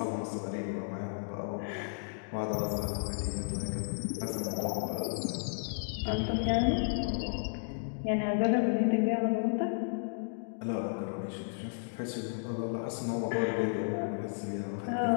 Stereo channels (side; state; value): right; silent; digital silence